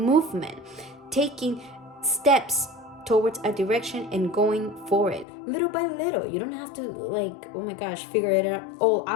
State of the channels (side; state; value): right; drops out; at 5.2 s